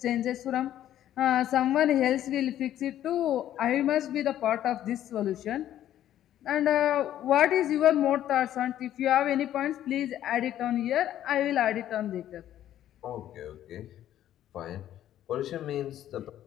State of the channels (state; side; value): quieter; right; 11.9 dB